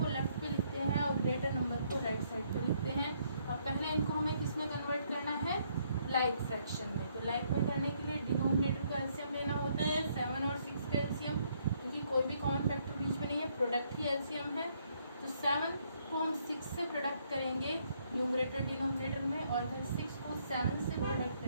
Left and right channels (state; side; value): inverted; both; correlation -0.70